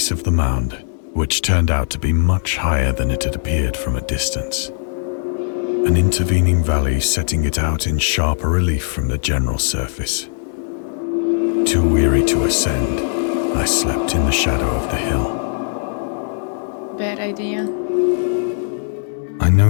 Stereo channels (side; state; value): right; silent; digital silence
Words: of the mound, which turned out to be much higher than it had appeared from a distance. An intervening valley setting it out in sharper relief from the general surface. Too weary to ascend, I slept in the shadow of the hill. Bad idea. I